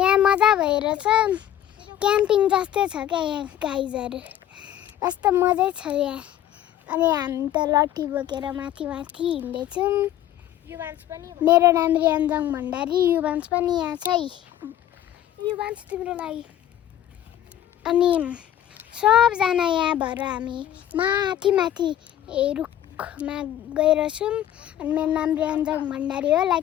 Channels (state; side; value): quieter; right; 11.7 dB